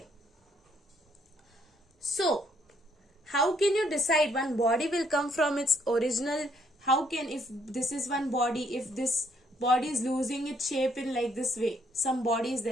so how can you decide one body will come from its original? How can, if this is one body, if this body is losing its shape in like this way, some body is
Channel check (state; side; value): normal; both; correlation 0.69